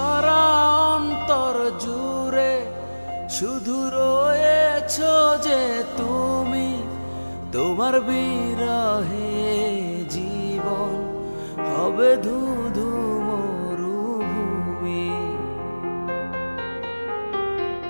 অন্তর জুড়ে শুধু রয়েছো যে তুমি, তোমার বিরহে জীবন হবে ধুধু মরুভূমি।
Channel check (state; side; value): inverted; both; correlation -1.00